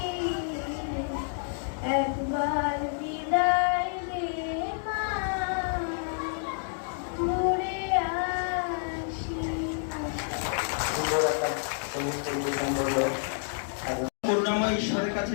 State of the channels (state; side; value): silent; right; digital silence